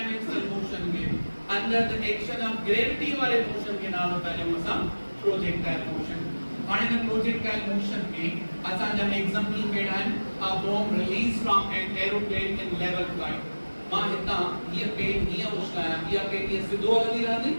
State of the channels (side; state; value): both; inverted; correlation -1.00